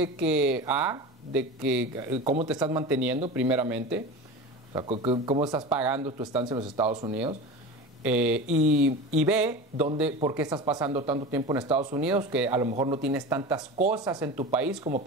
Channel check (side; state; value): both; normal; correlation 0.30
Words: que cómo te estás manteniendo primeramente, o sea, cómo estás pagando tu estancia en los Estados Unidos, y B, por qué estás pasando tanto tiempo en Estados Unidos, que a lo mejor no tienes tantas cosas en tu país como